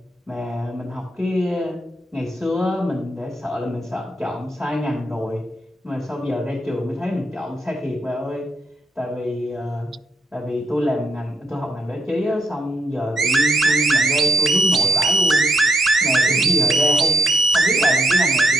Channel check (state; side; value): normal; both; correlation 0.77